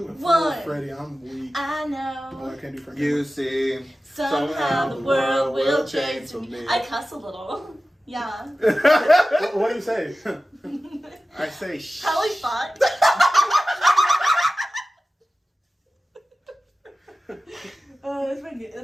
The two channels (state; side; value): normal; both; correlation 0.95